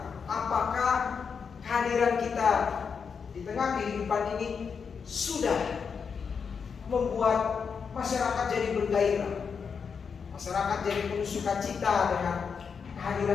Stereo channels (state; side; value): quieter; right; 6.1 dB